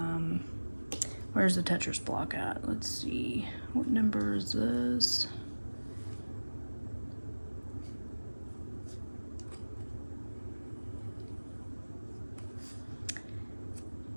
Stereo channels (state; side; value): inverted; both; correlation -1.00